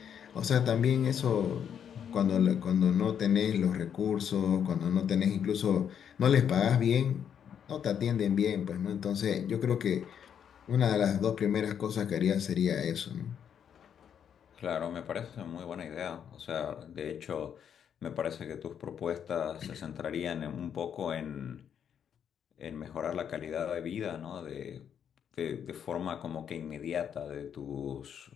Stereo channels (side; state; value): right; quieter; 8.4 dB